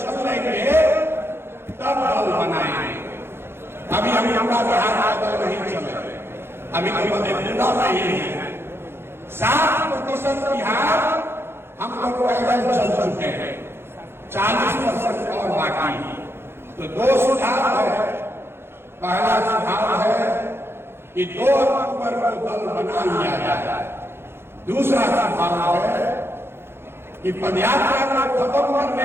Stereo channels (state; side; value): late; left; 0.11 ms